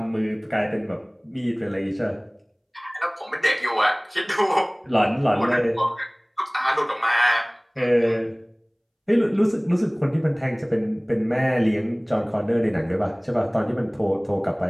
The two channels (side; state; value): both; identical; correlation 1.00